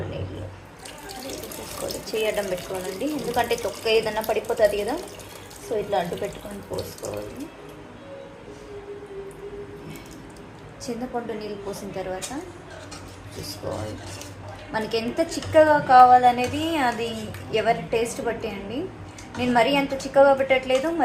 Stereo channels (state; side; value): identical; both; correlation 1.00